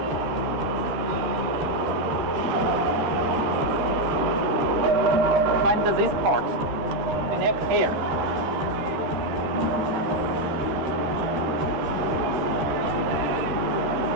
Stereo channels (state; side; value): late; left; 13 ms